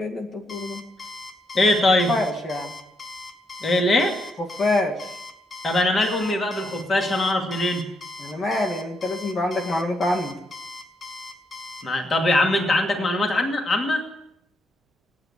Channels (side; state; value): both; normal; correlation 0.78